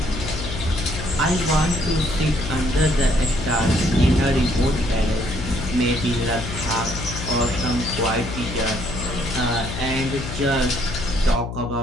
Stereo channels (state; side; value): noise; left; hum, 7 dB below the sound